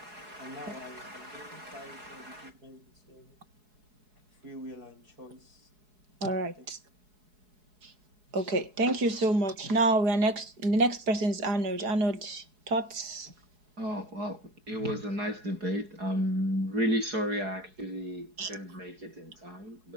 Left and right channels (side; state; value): left; late; 4.7 ms